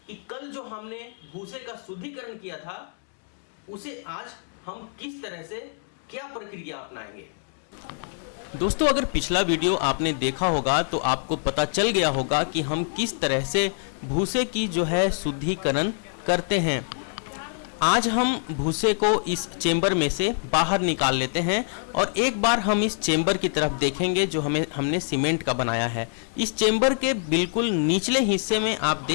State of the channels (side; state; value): right; silent; 61 dB below the other